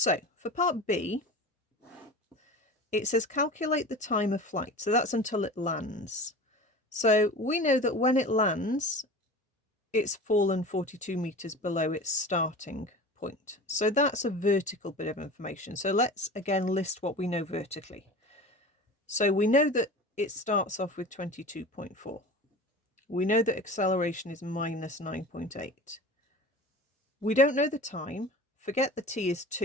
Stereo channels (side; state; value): both; normal; correlation 0.35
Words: for part B, it says calculate the time of flight. So that's until it lands. So we know that when it lands, it's fallen 42 meters below its starting point. So that's a vertical bit of information. So let's again list what we know vertically. So we know that it starts off with 22.4. We know that acceleration is minus 9.8. We don't know the time. Forget the t is